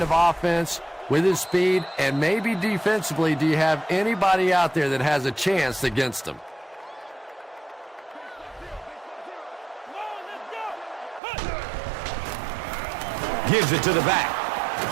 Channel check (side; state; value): left; drops out; at 11.2 s